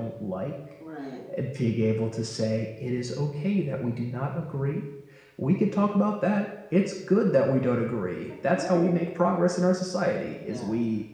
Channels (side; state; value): both; identical; correlation 1.00